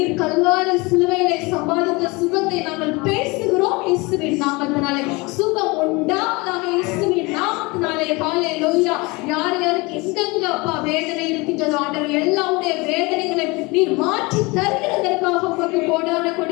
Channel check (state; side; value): quieter; right; 25.2 dB